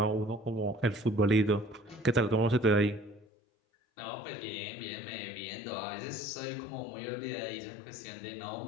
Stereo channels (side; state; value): right; drops out; at 3.2 s